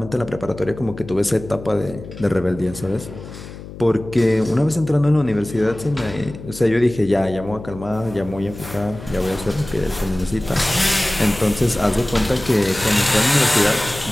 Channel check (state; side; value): noise; left; hum, 14 dB below the sound